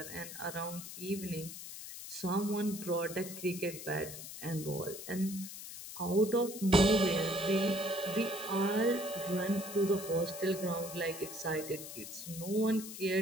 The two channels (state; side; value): noise; left; hiss, 10 dB below the sound